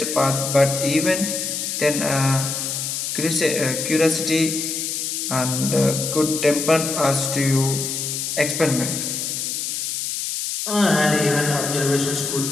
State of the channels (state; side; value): noise; left; hiss, 3 dB below the sound